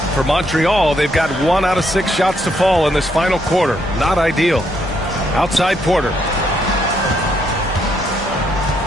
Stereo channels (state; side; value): normal; both; correlation 0.74